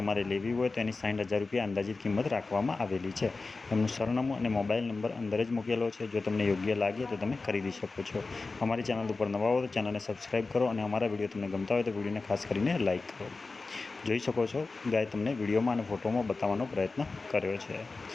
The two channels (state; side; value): quieter; right; 3.8 dB